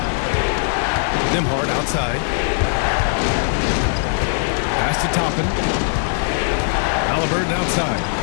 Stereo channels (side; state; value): right; silent; digital silence